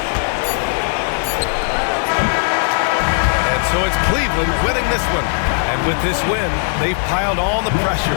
And so it's Cleveland winning this one. And with this win, they've piled on the pressure.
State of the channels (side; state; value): right; silent; digital silence